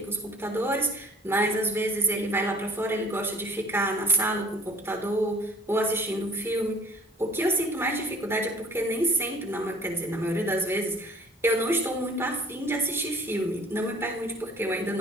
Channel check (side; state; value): both; normal; correlation 0.52